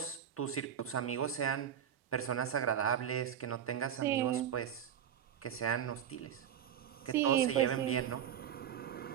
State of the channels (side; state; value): left; quieter; 9.3 dB